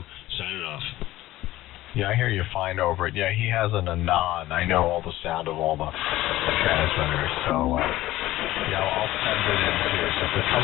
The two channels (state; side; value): quieter; right; 16.1 dB